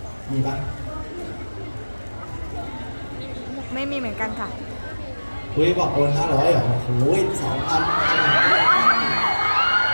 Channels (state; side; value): inverted; both; correlation -1.00